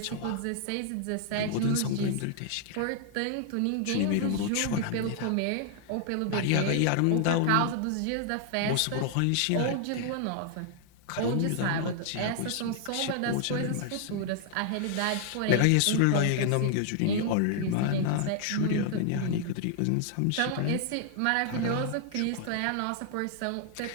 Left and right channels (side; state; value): both; different; correlation 0.00